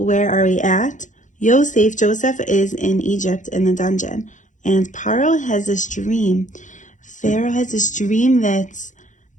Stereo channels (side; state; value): right; late; 0.36 ms